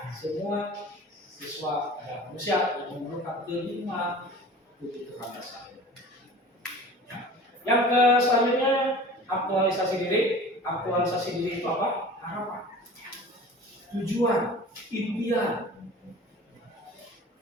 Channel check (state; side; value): normal; both; correlation 0.41